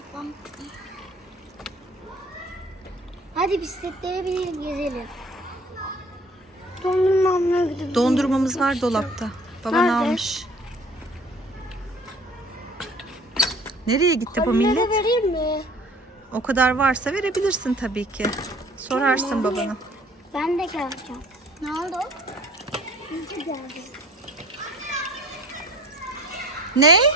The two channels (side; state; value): both; normal; correlation 0.50